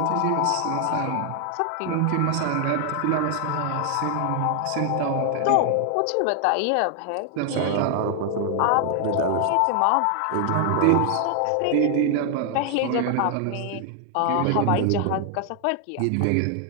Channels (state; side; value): different; both; correlation 0.00